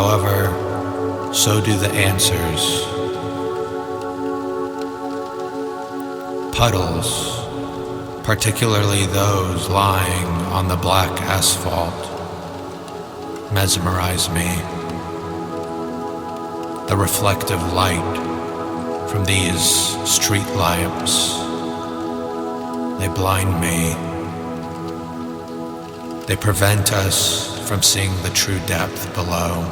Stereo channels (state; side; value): identical; both; correlation 1.00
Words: so do the answers. Puddles, particularly those lying on the black asphalt, mesmerize me. The reflective light from these street lamps, they blind me. They prevent us from seeing the true depth below.